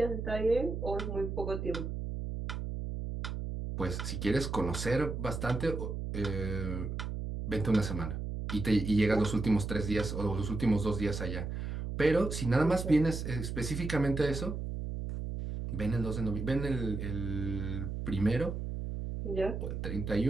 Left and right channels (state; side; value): noise; right; hum, 4 dB below the sound